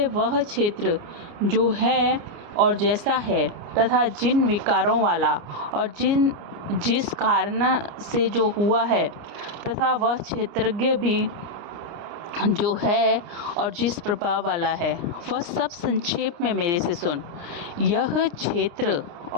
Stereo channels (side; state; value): left; late; 29 ms